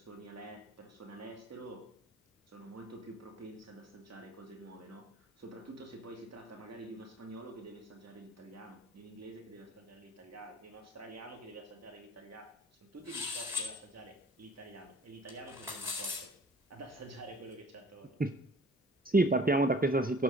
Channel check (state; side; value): normal; both; correlation 0.50